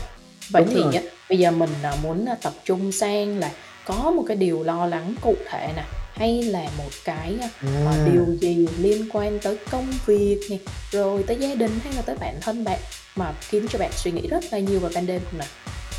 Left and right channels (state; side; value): identical; both; correlation 1.00